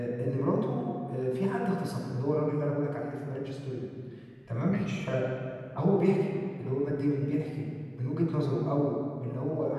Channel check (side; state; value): both; identical; correlation 1.00